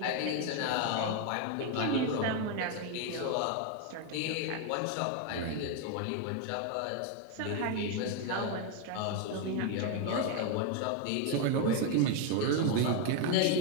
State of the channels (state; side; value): different; both; correlation 0.01